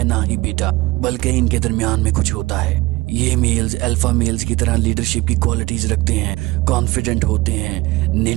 ना ही बीटा, बल्कि इनके दरमियान में कुछ होता है। ये मेल्स अल्फा मेल्स की तरह लीडरशिप की क्वालिटीज रखते हैं, कॉन्फिडेंट होते हैं,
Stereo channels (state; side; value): quieter; left; 20.6 dB